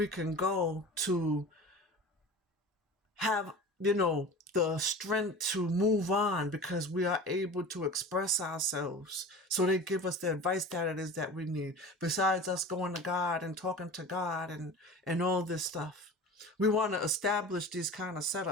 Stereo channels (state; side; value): normal; both; correlation 0.35